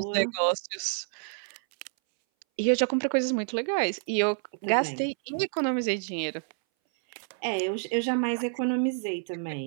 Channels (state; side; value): silent; left; 59 dB below the other